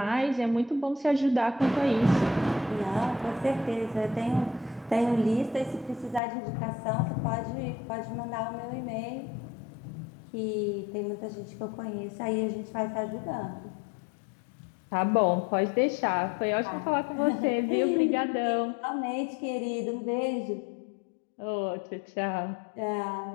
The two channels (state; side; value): drops out; right; at 6.2 s